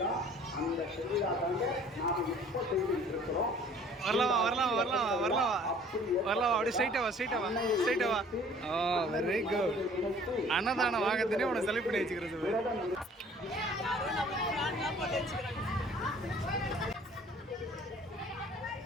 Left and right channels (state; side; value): normal; both; correlation 0.53